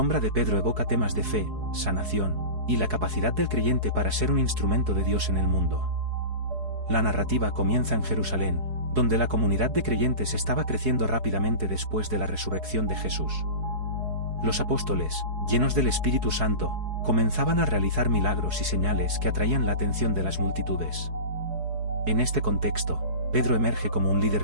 de Pedro evoca temas de fe, sanación, y la capacidad del creyente para ser un instrumento de Dios en el mundo. La narrativa comienza en Jerusalén, donde la comunidad de creyentes estaba creciendo rápidamente después de la resurrección de Jesús. Los apóstoles, llenos del Espíritu Santo, comenzaban a realizar milagros y señales que atraían la atención de las multitudes. En este contexto, Pedro emerge como un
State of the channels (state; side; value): late; left; 4.7 ms